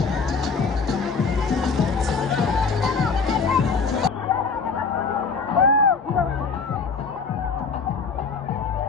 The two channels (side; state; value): right; quieter; 4.9 dB